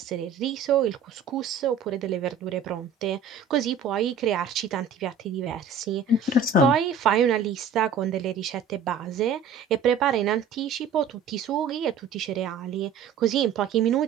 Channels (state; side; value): quieter; left; 6.0 dB